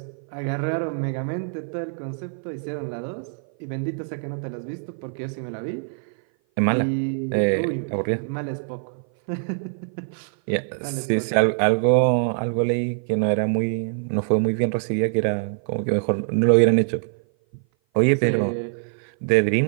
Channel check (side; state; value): left; silent; 57 dB below the other